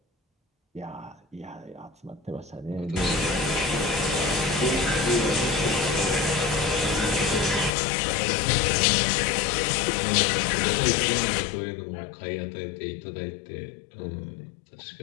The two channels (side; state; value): right; drops out; at 7.7 s